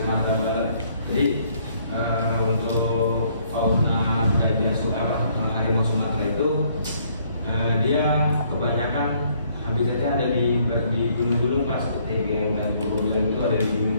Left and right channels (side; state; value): both; inverted; correlation -0.65